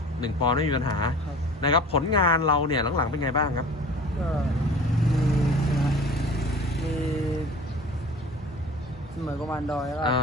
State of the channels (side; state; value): both; normal; correlation 0.43